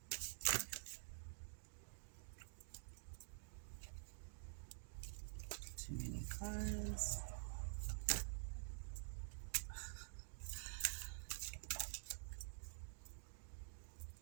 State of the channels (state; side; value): silent; left; digital silence